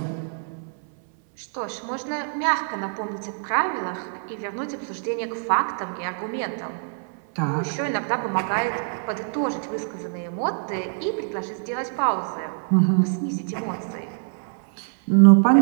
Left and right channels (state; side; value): silent; left; 62 dB below the other